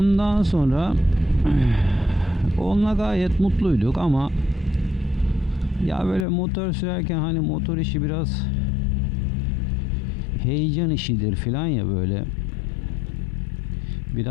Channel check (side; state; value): right; drops out; at 6.2 s